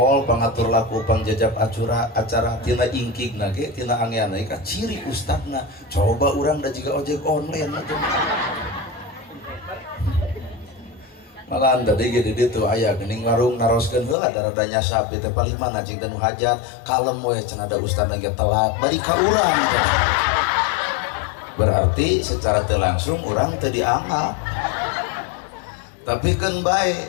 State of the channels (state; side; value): drops out; right; at 14.2 s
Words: pangatur laku pangjajab acara tina ingkig nage tina angeana ka ciri ustadna coba urang da jiga ojek online malah tadi gede ditu aya geuning warung naroskeun heula rada nyasap teh paling mana cing dan hajat kalem we cenah da ustad lagi telat bari ka urang berarti secara teu langsung urang teu dianggap tapi keun